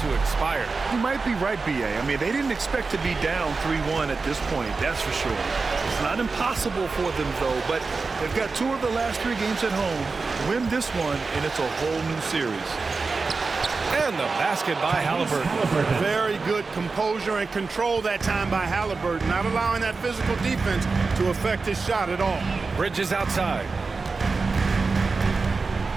to expire. You might be right, B.A. I mean, they didn't expect to be down 3-1 at this point, that's for sure. It's not impossible for them, though, but they've got 2 of the last 3 games at home. Win this one, and it's a whole new series. And the basket by Halliburton. Very good composure and control that time by Halliburton, not allowing that physical defense to affect his shot at all. Bridges outside.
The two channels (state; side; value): quieter; left; 4.2 dB